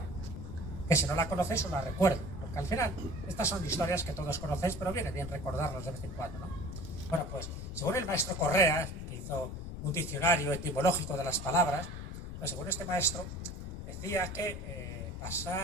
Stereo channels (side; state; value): left; noise; rumble, 9 dB below the sound